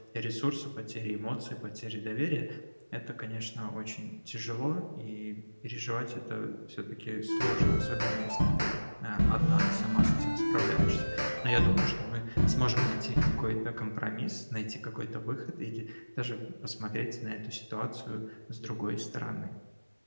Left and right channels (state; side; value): inverted; both; correlation -1.00